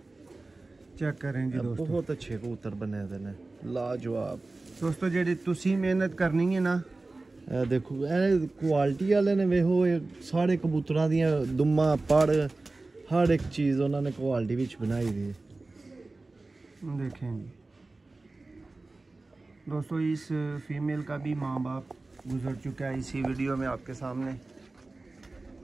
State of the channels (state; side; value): quieter; left; 3.3 dB